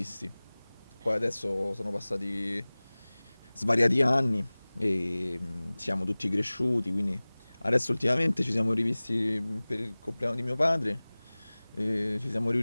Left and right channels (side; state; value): both; inverted; correlation -1.00